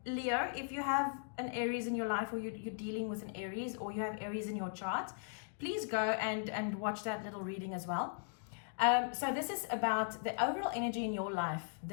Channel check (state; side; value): silent; right; digital silence